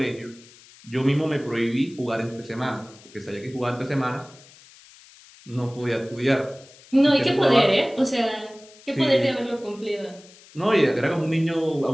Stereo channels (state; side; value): noise; left; hiss, 24 dB below the sound